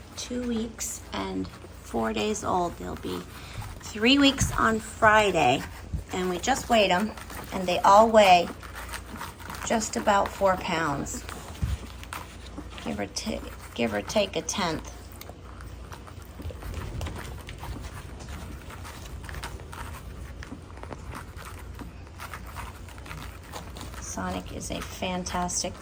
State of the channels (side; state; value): both; identical; correlation 1.00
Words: 2 weeks and 4 days old. They'll be 3 weeks on Friday, and we just weighed them, and they all weigh just about 4 pounds, give or take a tenth. Sonic is a fantastic